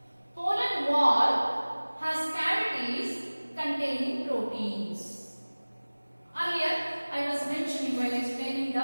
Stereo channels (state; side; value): inverted; both; correlation -1.00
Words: Pollen wall has cavities containing proteins. Earlier, I was mentioning while explaining the